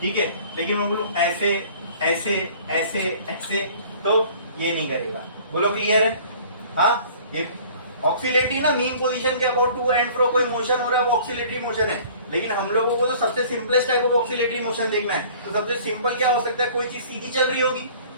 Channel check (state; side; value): inverted; both; correlation -0.50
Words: है, लेकिन मैं बोलूं ऐसे ऐसे ऐसे ऐसे तो ये नहीं करेगा। बोलो क्लियर है? हाँ, ये ऑक्सीलेटरी ना मीन पोजीशन के अबाउट टू एंड फ्रो कोई मोशन हो रहा है वो ऑक्सीलेटरी मोशन है। लेकिन हम लोगों को तो सबसे simplest type of oscillatory motion देखना है, तो सबसे सिंपल क्या हो सकता है? कोई चीज सीधी चल रही होगी,